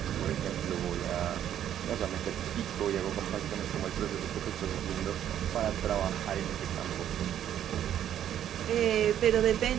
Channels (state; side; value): quieter; left; 10.6 dB